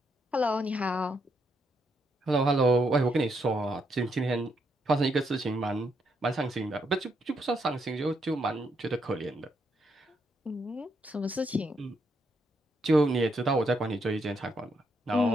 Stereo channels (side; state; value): both; normal; correlation 0.77